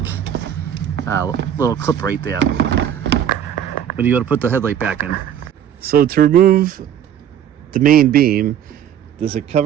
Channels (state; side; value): quieter; left; 9.7 dB